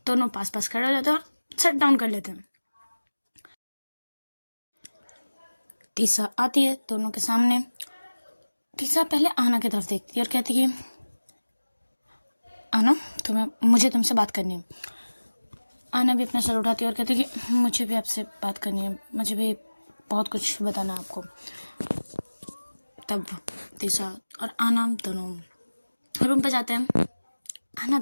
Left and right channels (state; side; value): inverted; both; correlation -1.00